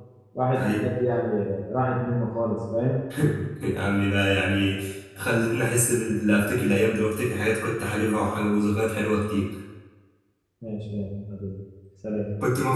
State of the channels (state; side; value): identical; both; correlation 1.00